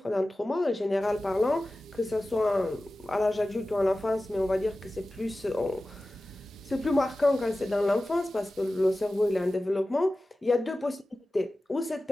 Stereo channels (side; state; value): both; normal; correlation 0.96